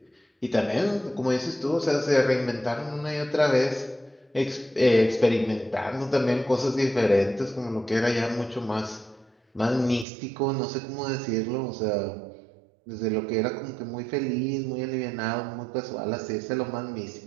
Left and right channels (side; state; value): left; drops out; at 10.1 s